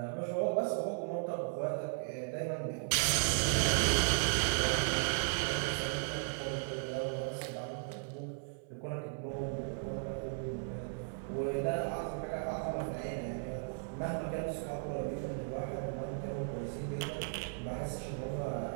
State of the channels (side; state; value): left; silent; 54 dB below the other